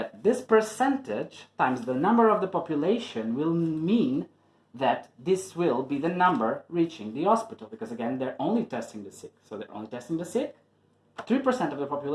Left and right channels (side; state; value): both; identical; correlation 1.00